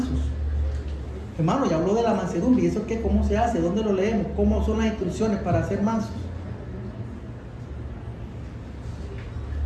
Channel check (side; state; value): both; identical; correlation 1.00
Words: Hermano, ya habló de la mansedumbre. ¿Y eso qué? ¿Cómo se hace? ¿Dónde lo leemos? ¿Cómo son las instrucciones para ser mansos?